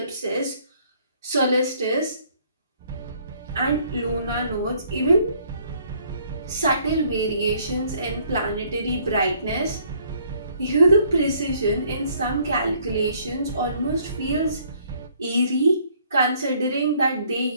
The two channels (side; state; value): both; inverted; correlation -0.63